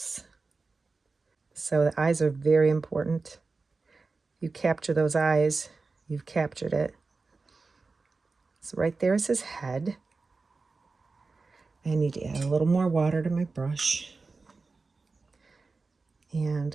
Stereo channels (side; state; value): left; quieter; 4.0 dB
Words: So the eyes are very important. You capture those eyes, you've captured it. So right there is his head. I need to add a little more water to my brush.